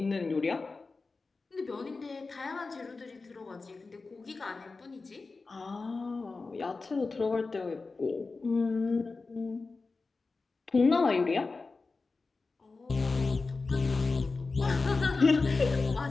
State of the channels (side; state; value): right; quieter; 3.9 dB